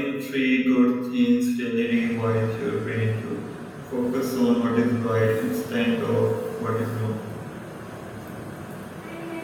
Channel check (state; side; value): identical; both; correlation 1.00